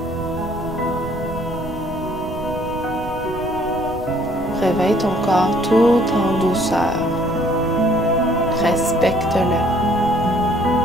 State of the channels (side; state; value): right; noise; rumble, 12 dB below the sound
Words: Réveille ton corps tout en douceur. Respecte-le.